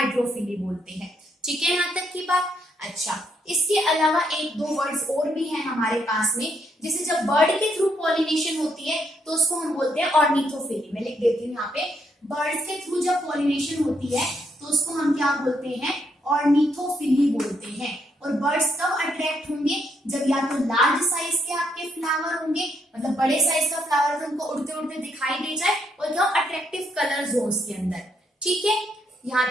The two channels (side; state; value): both; normal; correlation 0.74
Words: बोलते हैं। ठीक है, यहाँ तक की बात। अच्छा, इसके अलावा एक दो वर्ड्स और भी हैं हमारे पास में, जैसे जब बर्ड के थ्रू पॉलिनेशन होती है तो उसको हम बोलते हैं ऑर्निथोफिली। मैं लिख देती हूँ यहाँ पे, बर्ड्स के थ्रू जब पॉलिनेशन होती है तो उसको हम क्या बोलते हैं, ऑर्निथोफिली बोलते हैं। और बर्ड्स कब अट्रैक्ट होंगे, जब या तो लार्ज साइज के आपके फ्लावर होंगे, मतलब बड़े साइज का फ्लावर तो उनको उड़ते उड़ते दिखाई दे जाए, और क्या अट्रैक्टिव कलर्स हो उसके अंदर। ठीक है, यहाँ